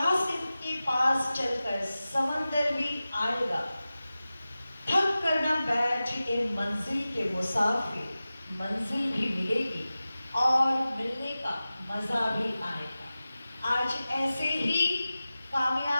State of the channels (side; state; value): both; inverted; correlation -0.96